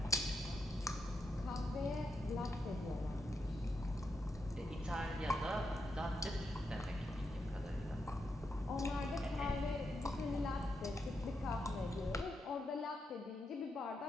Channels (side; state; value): both; normal; correlation 0.84